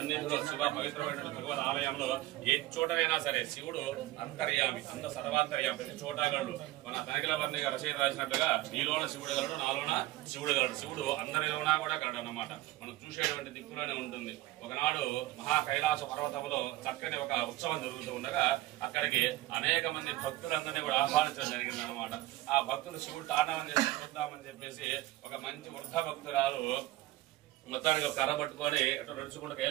శివ పవిత్రమైన భగవద్ ఆలయంలో ఏ చోటనైనా సరే శివుడు అంతర్యామి, అంత సర్వాంతర్యామి, ప్రతి చోటగలడు. మన తనిఖీల వర్ణి రచయిత రాసినట్లుగా నీలోన శివుడు గలడు, నాలోన శివుడు గలడు. శివుడు అందరిలోనా కూడా గలడు అన్నమాట. మనం చూసేటువంటి దిక్కులోనే ఉంటుంది. ఒకనాడు మహా కైలాస పర్వతంలో చక్కని ఒక ఉత్సవం జరుగుతూ ఉండగా అక్కడికి అనేక మంది భక్తులందరినీ కూడా ఆహ్వానించడం జరిగింది అనమాట. ఆ భక్తులు శివుడు తాండవం చేసి చూద్దామని చెప్పేసి ఒక మంచి వృద్ధ భక్తురాలు మొత్తానికి కర్ర పట్టుకొని అటు నడుచుకుంటూ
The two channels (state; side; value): quieter; left; 17.1 dB